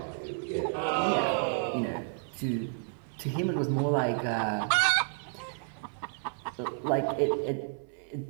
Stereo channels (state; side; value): silent; left; 57 dB below the other